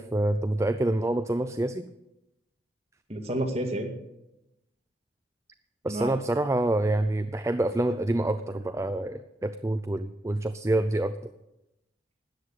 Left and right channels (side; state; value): both; normal; correlation 0.83